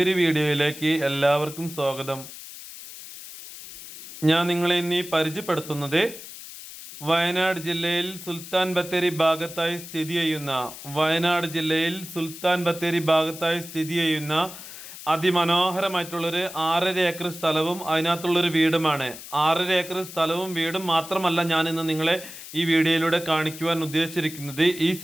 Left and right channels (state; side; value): noise; left; hiss, 14 dB below the sound